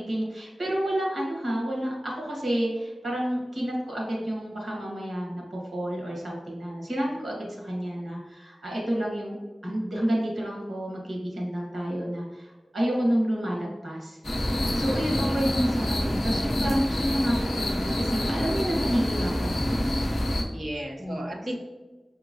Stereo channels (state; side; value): normal; both; correlation 0.97